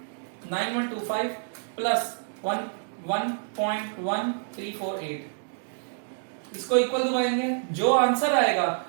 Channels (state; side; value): silent; left; 60 dB below the other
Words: प्लस 1.1348, इसको इक्वल दबाएंगे, जो आंसर आएगा